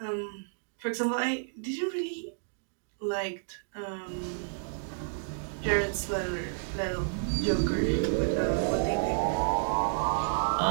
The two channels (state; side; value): silent; left; digital silence